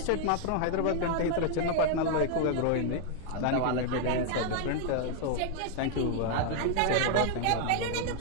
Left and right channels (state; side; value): different; both; correlation 0.00